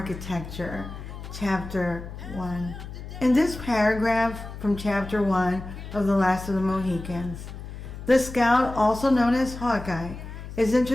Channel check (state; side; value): noise; left; hum, 11 dB below the sound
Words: Chapter 1. In this paragraph from Chapter 1 of The Last of the Mohicans, the scout, also known as Hawkeye, is